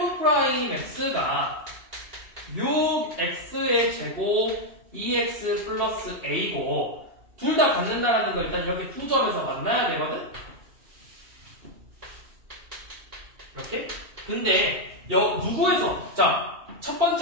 6x의 제곱 2x 플러스 a고 둘 다 갖는다라는 거 일단 이렇게 두 점에서 만나야 되거든? 이렇게? 근데 누구에서? 자, 첫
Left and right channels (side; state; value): left; late; 2.7 ms